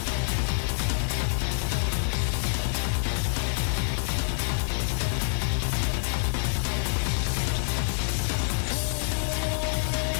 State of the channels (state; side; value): silent; right; 60 dB below the other